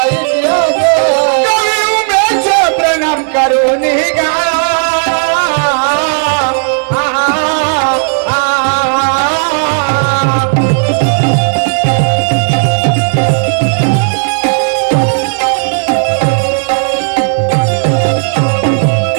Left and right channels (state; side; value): silent; left; digital silence